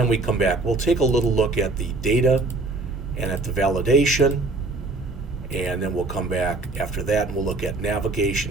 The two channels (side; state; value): left; quieter; 3.3 dB